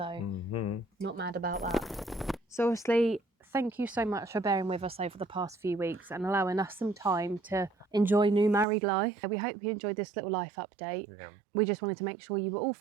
not mad about that. So obviously, thank you so much for bearing with us over the past few weeks and allowing us some time to enjoy new married life. We hope you enjoyed this little life update. Yeah. We just wanted to make sure you were all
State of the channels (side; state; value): left; drops out; at 8.7 s